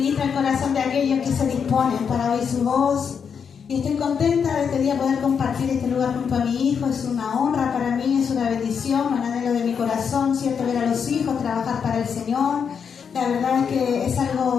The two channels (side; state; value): right; quieter; 6.8 dB